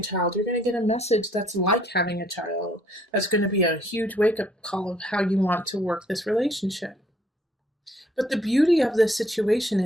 child, you're going to get a message that's like having a child. That's going to be a huge wake-up call of how you want to work this relationship. But the beauty of this situation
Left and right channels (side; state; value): both; normal; correlation 0.63